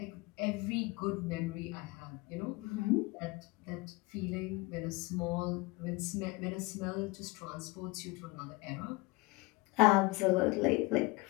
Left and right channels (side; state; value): right; quieter; 24.0 dB